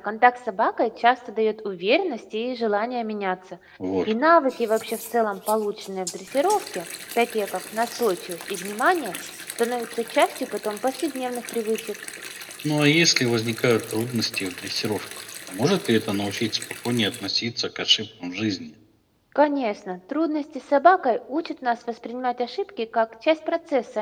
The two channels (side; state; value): both; identical; correlation 1.00